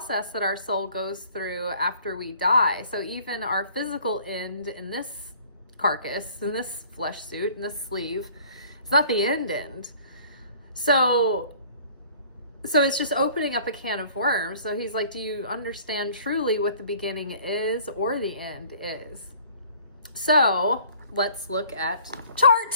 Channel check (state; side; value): inverted; both; correlation -0.52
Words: that our soul goes through after we die. So even our physical end in this carcass, in this flesh suit, in this sleeve, it's not the end. So it's just opening up a can of worms. So he's like, do you understand truly what the beginning is or the end is? So let's look at